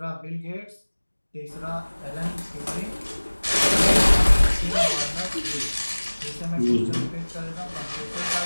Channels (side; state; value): both; inverted; correlation -1.00